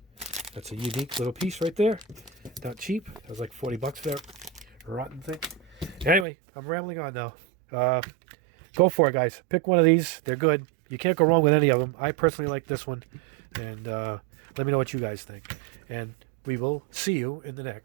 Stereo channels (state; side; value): drops out; left; at 6.2 s